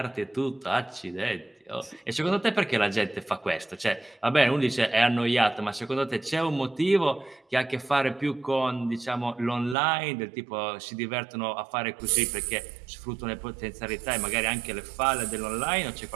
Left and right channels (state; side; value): drops out; left; at 9.8 s